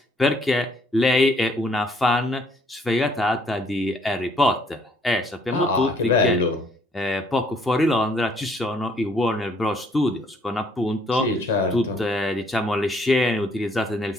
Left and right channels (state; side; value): normal; both; correlation 0.64